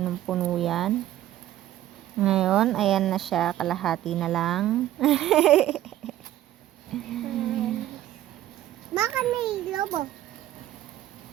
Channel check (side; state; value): left; quieter; 13.4 dB